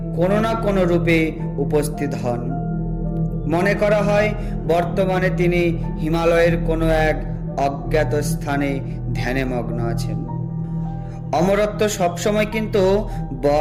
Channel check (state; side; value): identical; both; correlation 1.00